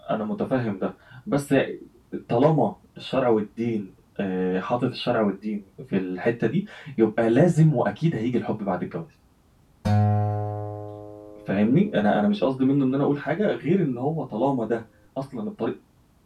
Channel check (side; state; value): both; identical; correlation 1.00